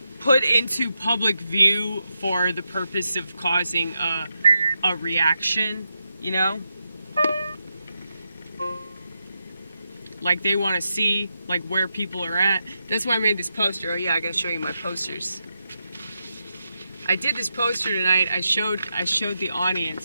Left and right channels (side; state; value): both; inverted; correlation -0.86